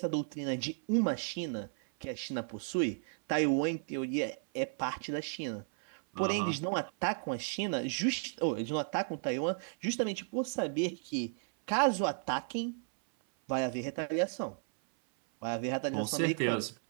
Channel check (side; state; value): left; silent; 55 dB below the other